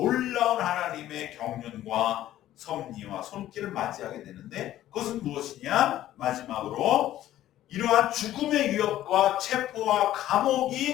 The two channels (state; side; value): quieter; right; 13.4 dB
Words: 하나님의 경륜과 섭리와 손길을 맞이하게 되는데 그것은 무엇이냐? 마지막으로 이러한 죽음의 위협과 체포와